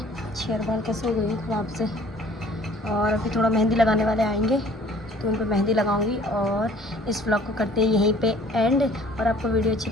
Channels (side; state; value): both; normal; correlation 0.54